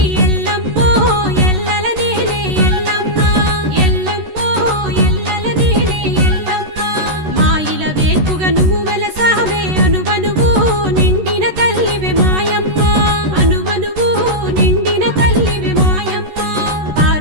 ఎల్లమ్మో ఎల్లల నేలే ఎల్లమ్మ ఎల్లమ్మో ఎల్లల నేలే ఎల్లమ్మ మాయిల వేకుగా నువ్వు వెలసావే అనువనువు నిండిన తల్లివే మాయమ్మ అనువనువు నిండిన తల్లివే మాయమ్మ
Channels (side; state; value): left; late; 13 ms